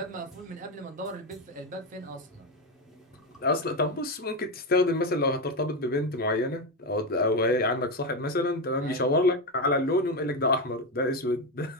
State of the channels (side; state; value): both; normal; correlation 0.12